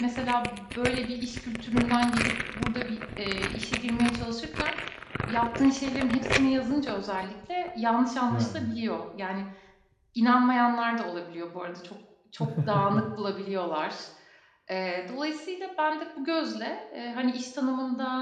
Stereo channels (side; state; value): both; identical; correlation 1.00